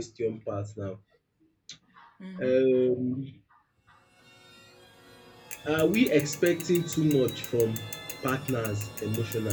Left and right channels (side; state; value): both; identical; correlation 1.00